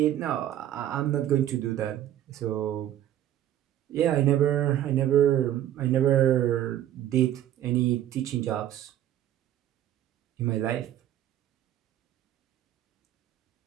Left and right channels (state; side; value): quieter; left; 11.9 dB